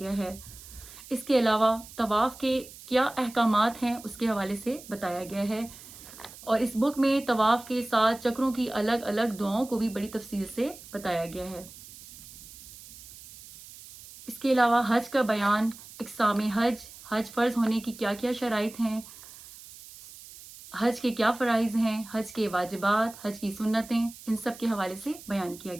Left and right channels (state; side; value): noise; right; hiss, 17 dB below the sound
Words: ہے۔ اس کے علاوہ طواف کے کیا احکامات ہیں اس کے حوالے سے بتایا گیا ہے، اور اس بک میں طواف کے 7 چکروں کی الگ الگ دعاؤں کو بھی بڑی تفصیل سے بتایا گیا ہے۔ اس کے علاوہ حج کا بیان، اقسام حج، حج فرض ہونے کی کیا کیا شرائط ہیں، حج کے کیا فرائض ہیں، حج کے واجبات، حج کی سنتیں، ان سب کے حوالے سے بیان کیا